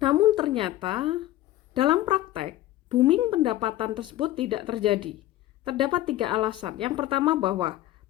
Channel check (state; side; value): quieter; right; 14.8 dB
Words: ternyata dalam praktek, booming pendapatan tersebut tidak terjadi. Terdapat 3 alasan. Yang pertama bahwa